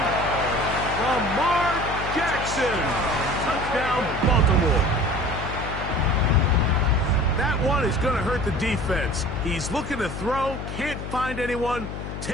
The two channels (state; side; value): noise; left; hum, 8 dB below the sound